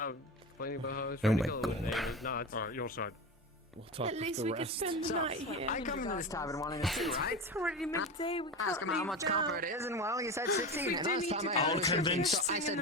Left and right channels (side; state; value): both; normal; correlation 0.25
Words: Oh my god. Alright, your side. At least we could spend the night here. I come into this tavern wanting to see, right? It's already midday. We Ask him can't how leave much now. copper it is, and well, you said 16. We and do last need time to I go. asked, I'll convince- I